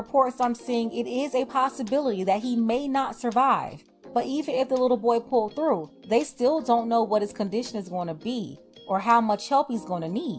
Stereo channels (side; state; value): both; identical; correlation 1.00